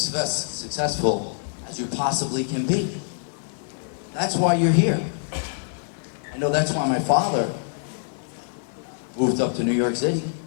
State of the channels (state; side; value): silent; right; 62 dB below the other